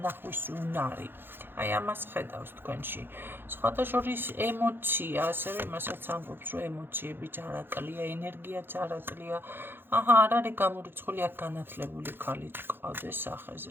უნარი. აი ამას ხედავს თქვენში. სხვათა შორის ემოცია, ასევე იმასაც ამბობს, რომ ემოციები ჯარაკლია, ენერგია ჯარაკლია. არ არის გამორიცხული აქ განათლებული ქალი გყავდეს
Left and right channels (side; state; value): left; late; 0.10 ms